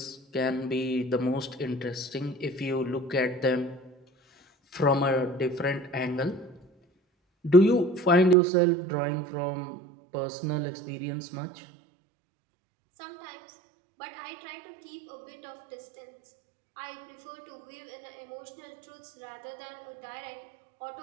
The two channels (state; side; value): drops out; left; at 8.3 s